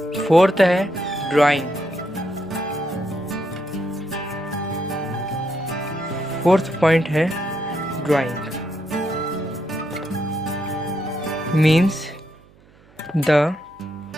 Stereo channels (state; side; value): noise; right; hum, 28 dB below the sound